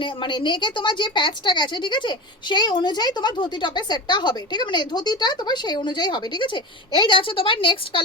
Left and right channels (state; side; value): normal; both; correlation 0.27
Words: মানে নেকে তোমার যে প্যাচটা গেছে, ঠিক আছে, সেই অনুযায়ী তোমার ধুতি টপের সেটটা হবে। ঠিক আছে, মানে ধুতিটা তোমার সেই অনুযায়ী হবে। ঠিক আছে, এই যাচ্ছে তোমার নেক্সট